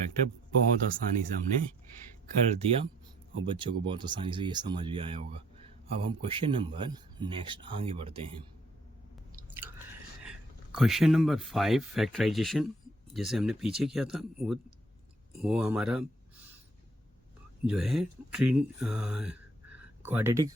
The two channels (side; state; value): both; normal; correlation 0.64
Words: बहुत आसानी से हमने कर दिया और बच्चों को बहुत आसानी से ये समझ भी आया होगा। अब हम क्वेश्चन नंबर नेक्स्ट आगे बढ़ते हैं। क्वेश्चन नंबर 5 फैक्टराइजेशन, जैसे हमने पीछे किया था वो हमारा जो है क्वाड्रेटिक